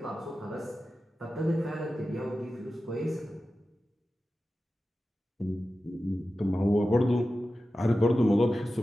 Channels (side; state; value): both; normal; correlation 0.93